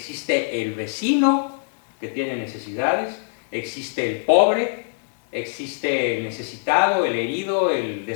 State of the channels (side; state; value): right; silent; digital silence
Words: el vecino que tiene necesidades, existe el pobre, existe el necesitado, el herido, el